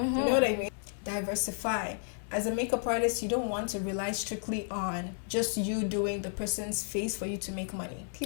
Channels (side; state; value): right; silent; digital silence